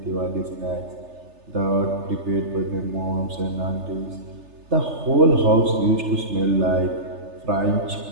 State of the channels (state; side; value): late; left; 3.3 ms